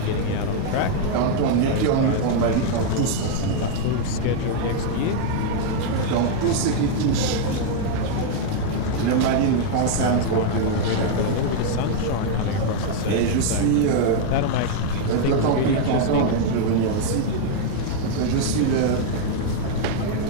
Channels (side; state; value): both; different; correlation 0.00